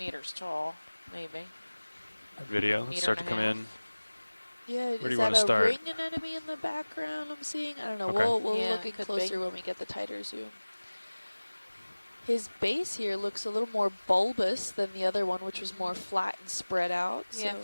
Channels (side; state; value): both; inverted; correlation -1.00